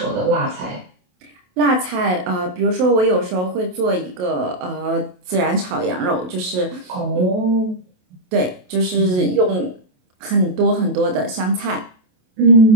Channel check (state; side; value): late; left; 28 ms